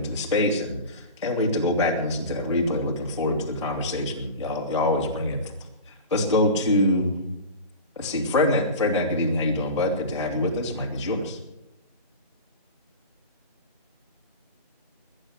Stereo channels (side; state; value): both; inverted; correlation -0.30